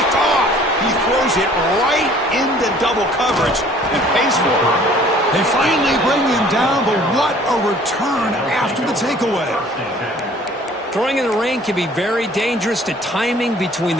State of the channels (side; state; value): both; normal; correlation 0.53